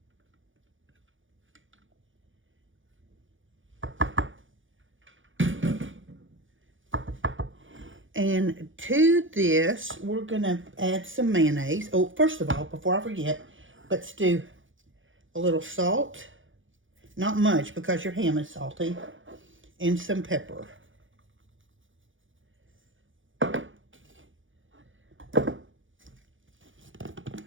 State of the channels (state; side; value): late; left; 0.57 ms